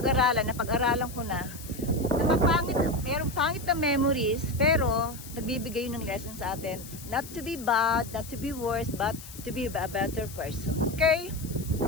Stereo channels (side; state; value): left; noise; hiss, 15 dB below the sound